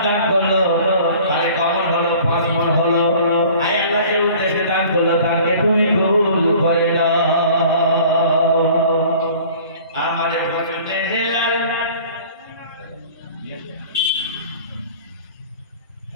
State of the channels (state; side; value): inverted; both; correlation -0.48